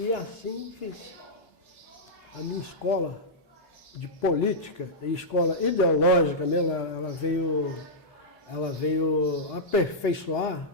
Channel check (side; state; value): both; normal; correlation -0.10